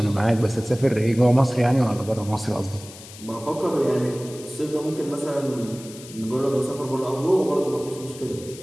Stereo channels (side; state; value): left; noise; hiss, 17 dB below the sound